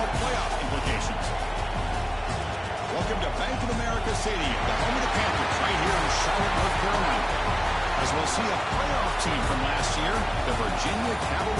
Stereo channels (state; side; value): identical; both; correlation 1.00